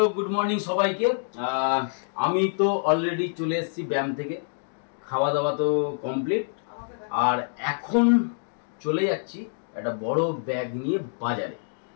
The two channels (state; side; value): silent; right; digital silence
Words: গুড মর্নিং সবাইকে। আমি তো অলরেডি চলে এসেছি ব্যায়াম থেকে, খাওয়া দাওয়া তো কমপ্লিট, আর এখন চলে যাচ্ছি একটা বড় ব্যাগ নিয়ে বাজারে।